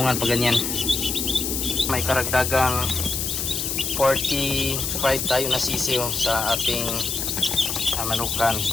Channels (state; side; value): noise; left; hiss, 2 dB below the sound